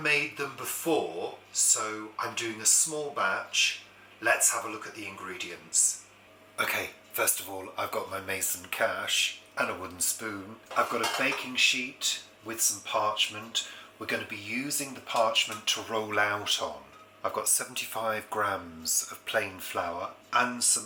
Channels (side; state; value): both; identical; correlation 1.00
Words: them before, so I'm doing a small batch. Let's have a look at the ingredients. Okay, first of all, I've got my mason cash and a wooden spoon. I've got a baking sheet with some parchment. We're going to be using the parchment to roll out on. I've got 75 grams of plain flour and